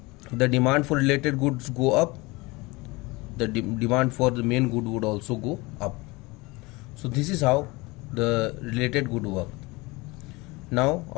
the demand for related goods go up, the demand for the main good would also go up. So this is how the related good work. Now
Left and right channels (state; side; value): quieter; right; 23.9 dB